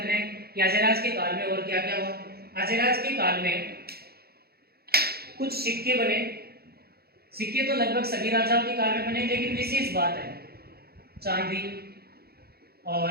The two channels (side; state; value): left; late; 0.46 ms